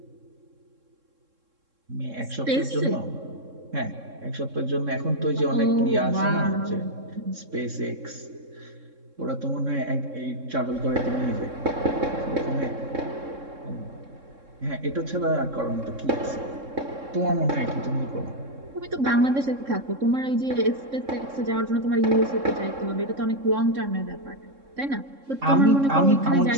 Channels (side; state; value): left; late; 3.7 ms